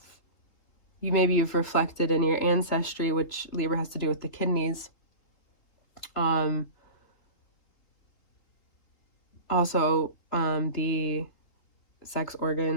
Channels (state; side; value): late; right; 3.1 ms